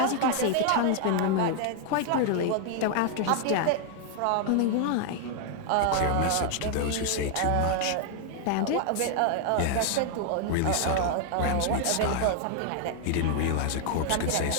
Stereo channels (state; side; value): different; both; correlation 0.00